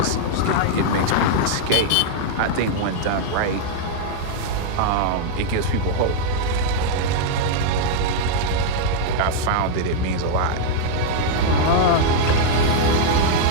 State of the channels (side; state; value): both; different; correlation -0.01